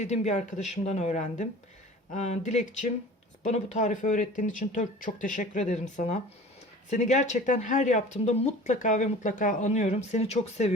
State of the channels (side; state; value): both; normal; correlation 0.42